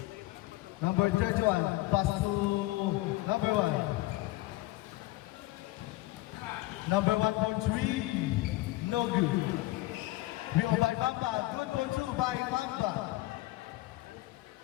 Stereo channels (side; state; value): right; quieter; 18.8 dB